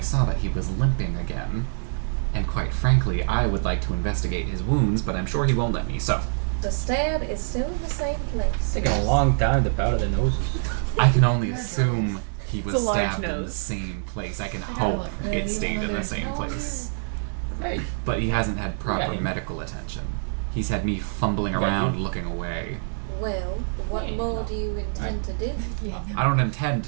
saw that he was limping again. And quite frankly, I would like to investigate his wounds, but I'm sure he won't let me, so The stab is still in the same place. It's taking a long time to powder the noses. I can only assume he was It's a large stabbed in the nose. same place. I can gotta hope look really it stayed in the well. same place. Hey, But he hasn't had proper Yeah. medical attention. He's had me fumbling Yeah, around you- looking away. Well, what Yeah, more no. do you intend to do? I don't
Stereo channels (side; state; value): left; silent; digital silence